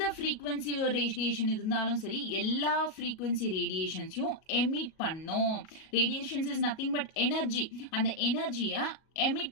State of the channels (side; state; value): right; late; 37 ms